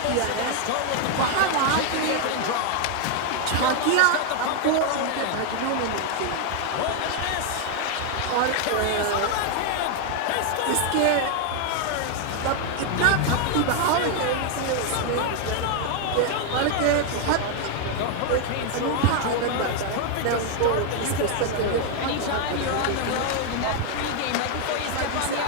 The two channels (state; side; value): different; both; correlation 0.00